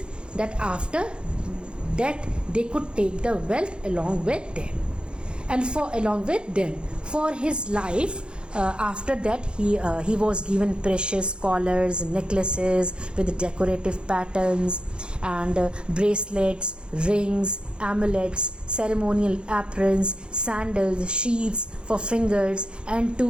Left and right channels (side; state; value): left; late; 0.053 ms